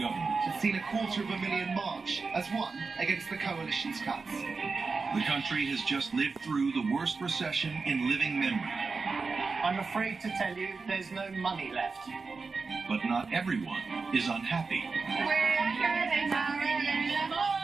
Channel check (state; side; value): quieter; left; 4.4 dB